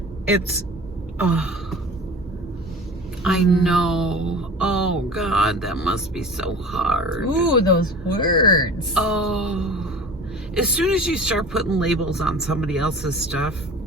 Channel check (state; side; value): normal; both; correlation 0.39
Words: It's, I know. Oh God, that must be so hard. Ooh, those words. Oh, as soon as you start putting labels on somebody else's stuff,